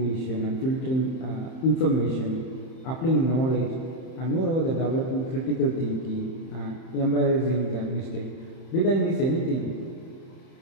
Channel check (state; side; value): late; right; 31 ms